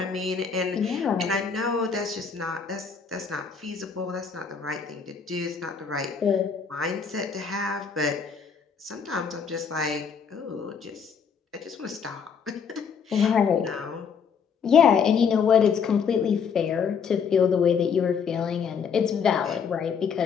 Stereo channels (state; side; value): quieter; right; 6.3 dB